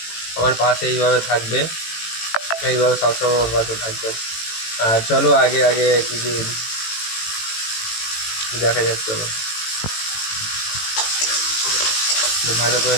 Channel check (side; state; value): right; late; 18 ms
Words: আমার পাশে এইভাবে থাকবে, এইভাবে সবসময় আমার পাশে থাকবেন। আর চলো আগে আগে কিছু দেখা যাক। চলো ভালো করে